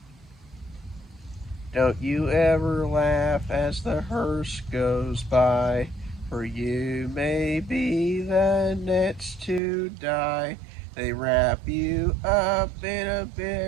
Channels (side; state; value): left; drops out; at 9.6 s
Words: Don't you ever laugh as the hearse goes by, for you may be the next to die. They wrap you up in a